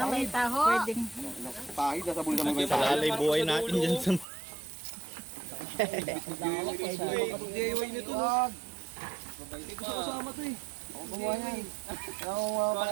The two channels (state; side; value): drops out; left; at 4.2 s